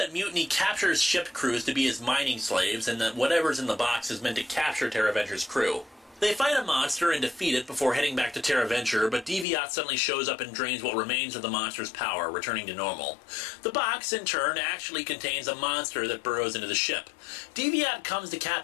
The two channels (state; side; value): drops out; right; at 9.5 s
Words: Mutiny captures ship crews to be his mining slaves, and that whatever's in the box is meant to capture Terra Venture's crew. They fight a monster and defeat it before heading back to Terra Venture, but Deviat suddenly shows up and drains what remains of the monster's power, returning to normal. The box, in turn, actually contains a monster that burrows into the ship. Deviat comes to